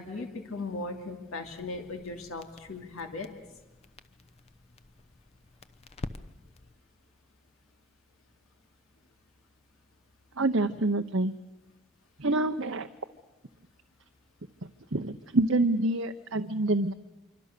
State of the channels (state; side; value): normal; both; correlation 0.37